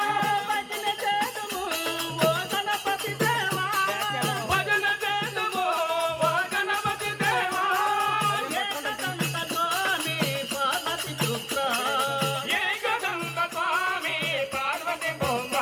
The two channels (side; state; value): both; identical; correlation 1.00